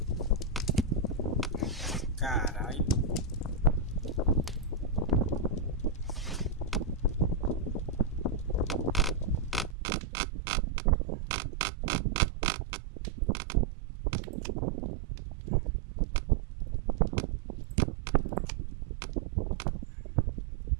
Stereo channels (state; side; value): drops out; left; at 9.8 s